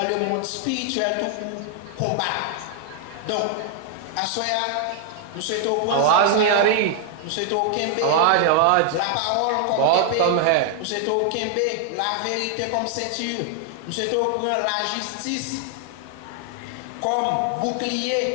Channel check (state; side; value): different; both; correlation 0.00